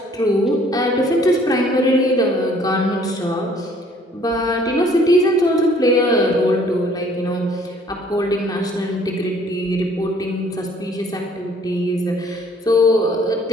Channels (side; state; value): both; normal; correlation 0.58